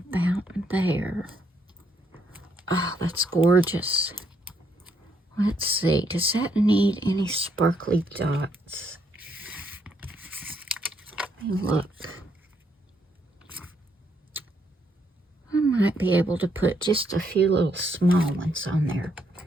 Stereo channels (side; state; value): both; normal; correlation 0.73